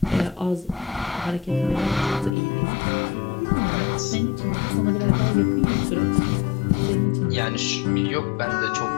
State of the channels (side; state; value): right; drops out; at 2.4 s